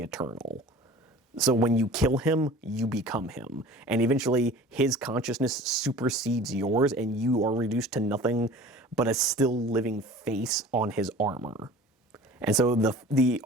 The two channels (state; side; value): normal; both; correlation 0.43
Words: Eternal. So when you kill him, you become him. And eventually, his consciousness supersedes yours, and you are reduced to nothing but a still living face on his armor. And so the